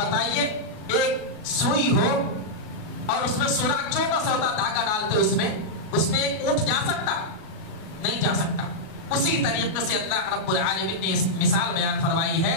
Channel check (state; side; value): late; right; 38 ms